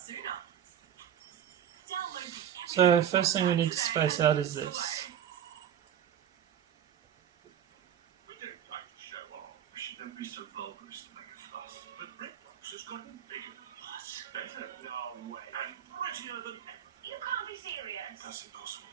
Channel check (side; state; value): left; quieter; 9.7 dB